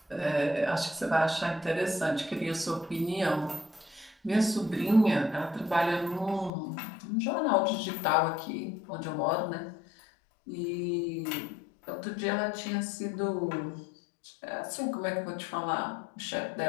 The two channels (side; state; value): right; drops out; at 6.5 s